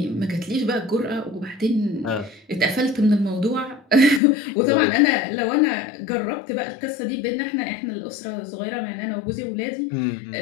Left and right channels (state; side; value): drops out; right; at 4.2 s